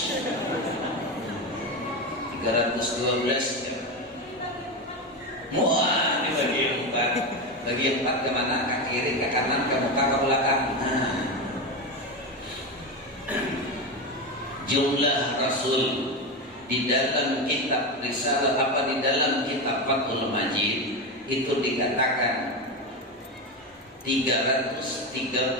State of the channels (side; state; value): both; normal; correlation 0.16